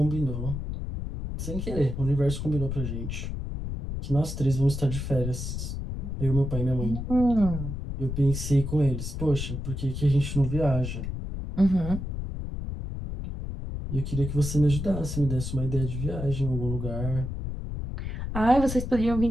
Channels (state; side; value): noise; left; rumble, 5 dB below the sound